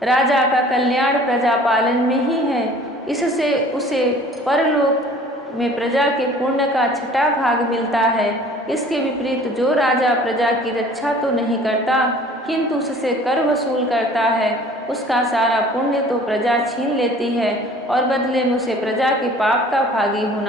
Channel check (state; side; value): normal; both; correlation 0.49